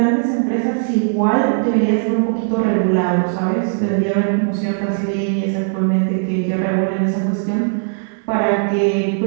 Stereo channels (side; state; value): left; silent; digital silence